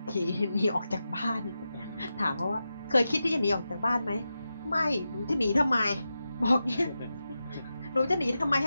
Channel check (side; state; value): both; inverted; correlation -0.91